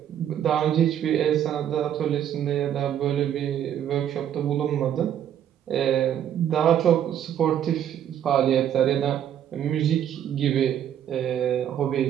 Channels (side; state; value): left; quieter; 10.1 dB